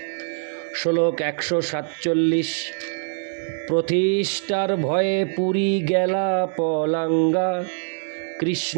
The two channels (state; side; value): silent; left; digital silence